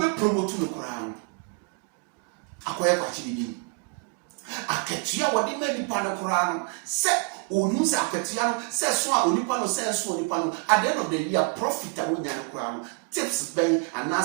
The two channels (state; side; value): quieter; left; 33.2 dB